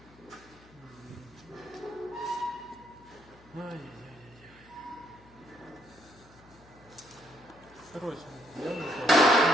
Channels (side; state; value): left; noise; hum, 25 dB below the sound